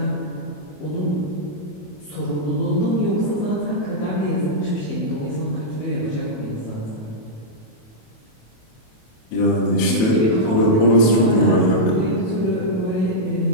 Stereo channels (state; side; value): late; right; 28 ms